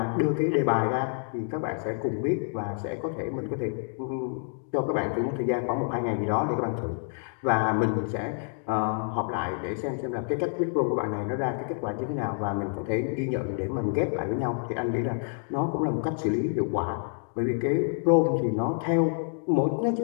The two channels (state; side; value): silent; right; 59 dB below the other